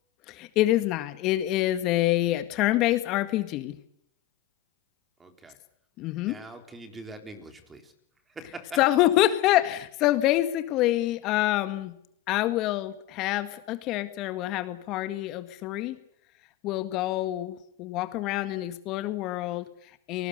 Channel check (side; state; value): right; quieter; 14.5 dB